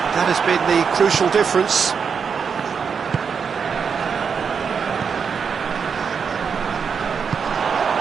that has been the crucial difference.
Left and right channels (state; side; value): quieter; left; 6.3 dB